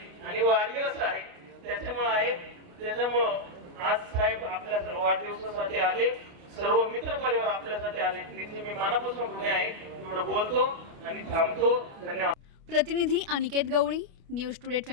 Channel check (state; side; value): late; left; 29 ms